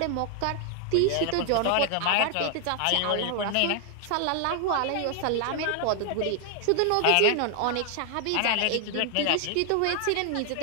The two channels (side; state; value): both; different; correlation 0.00